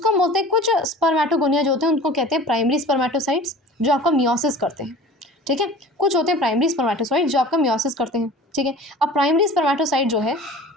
बोलते हैं, कुछ स्पर्मेटोगोनिया जो होते हैं उनको कहते हैं प्राइमरी स्पर्मेटोसाइट्स, जो आपका मियोसिस करते हैं। ठीक है, कुछ होते हैं प्राइमरी स्पर्मेटोसाइट जो आपका मियोसिस करते हैं। ठीक है, अब प्राइमरी स्पर्मेटोसाइट जो है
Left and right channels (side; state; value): both; normal; correlation 0.42